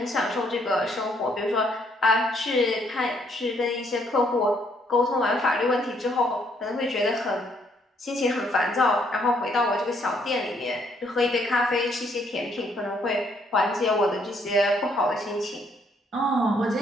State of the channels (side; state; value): both; normal; correlation 0.69